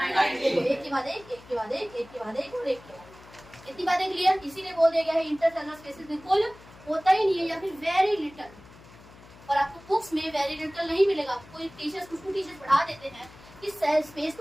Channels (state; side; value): noise; left; hum, 22 dB below the sound